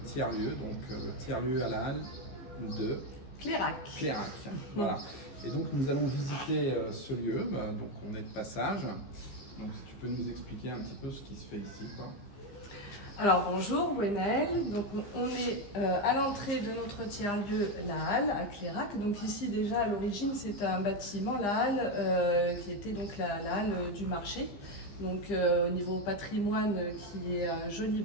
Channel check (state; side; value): late; right; 15 ms